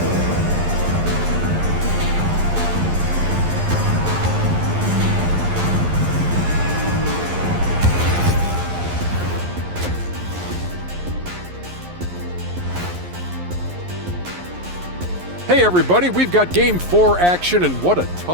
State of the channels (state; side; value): late; left; 11 ms